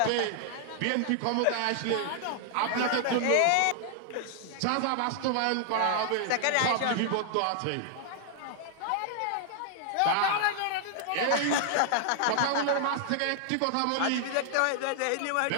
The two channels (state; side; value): different; both; correlation 0.00